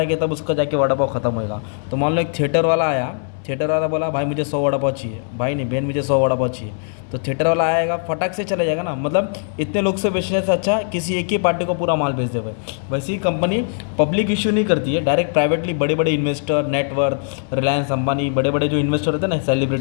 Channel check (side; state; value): right; silent; 60 dB below the other